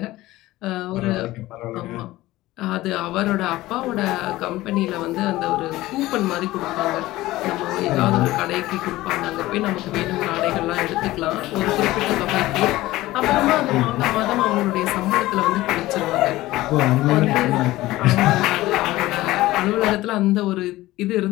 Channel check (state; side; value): quieter; right; 17.4 dB